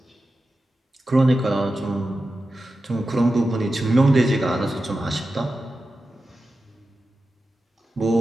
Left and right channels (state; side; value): normal; both; correlation 0.92